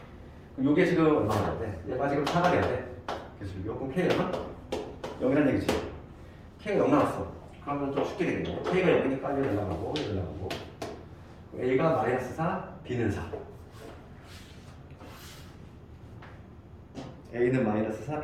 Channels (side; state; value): both; identical; correlation 1.00